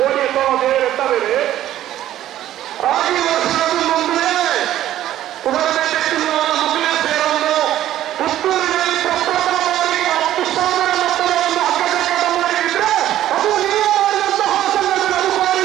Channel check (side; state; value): left; quieter; 12.9 dB